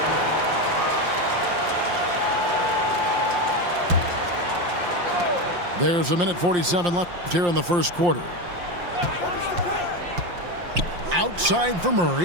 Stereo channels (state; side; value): late; left; 5.7 ms